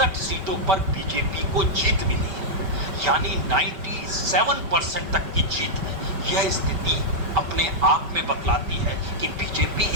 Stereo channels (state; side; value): late; left; 5.2 ms